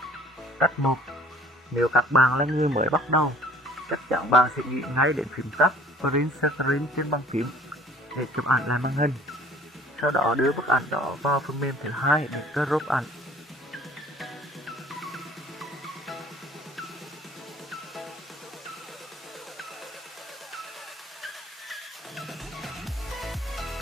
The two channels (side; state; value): both; normal; correlation 0.52